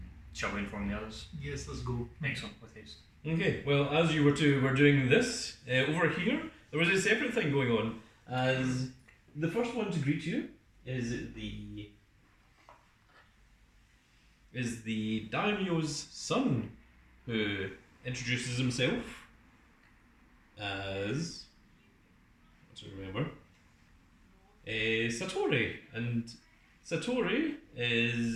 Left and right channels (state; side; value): identical; both; correlation 1.00